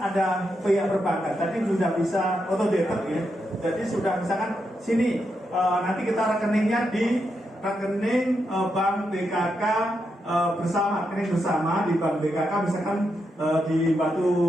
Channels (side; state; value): both; normal; correlation 0.84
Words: ada pihak perbankan. Tadi sudah bisa auto debit ya. Jadi sudah misalkan sini nanti kita rekeningnya di rekening Bank BKK bersama, rekening bersama di Bank BKK misalkan di